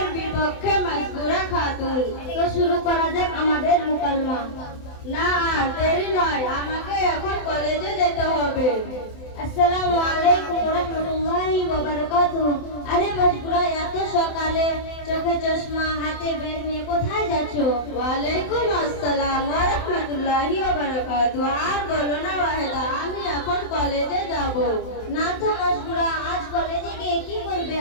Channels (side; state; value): right; late; 27 ms